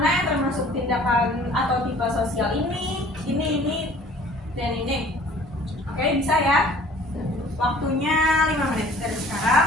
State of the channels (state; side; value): normal; both; correlation 0.51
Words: yang termasuk tindakan atau tipe sosial ini, dan ini. Oke, bisa ya? Waktunya 5 menit dari sekarang.